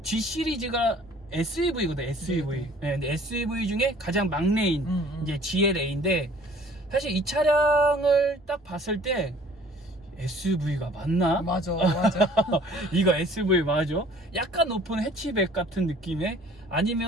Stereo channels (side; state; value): both; normal; correlation 0.53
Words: G 시리즈가 SUV거든, SUV. 네, 근데 SUV 중에 가장 막내인 이제 GLA인데, 사실 이 차량을 딱 봤을 때 SUV가 맞나? 맞아. 이거 SUV 맞아? 약간 높은 해치백 같은 느낌의,